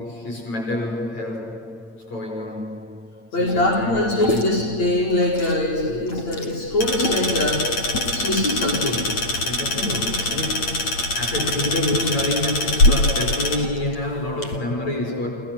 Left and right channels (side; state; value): right; late; 8.8 ms